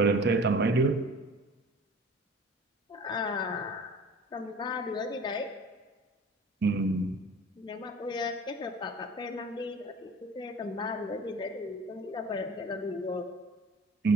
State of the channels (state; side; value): normal; both; correlation 0.43